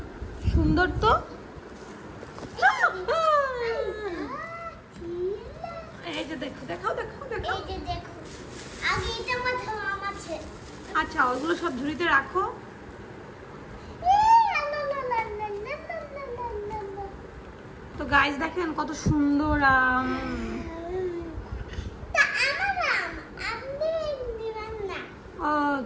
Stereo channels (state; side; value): identical; both; correlation 1.00